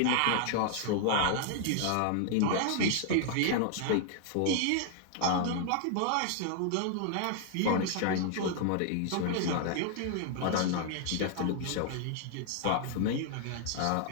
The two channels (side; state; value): both; different; correlation 0.00